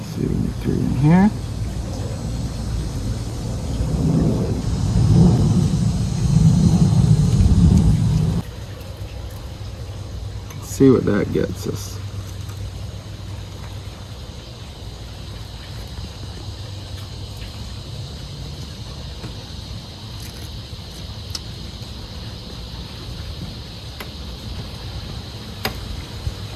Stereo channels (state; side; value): identical; both; correlation 1.00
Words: see, we get 3 in here. See what that gets us.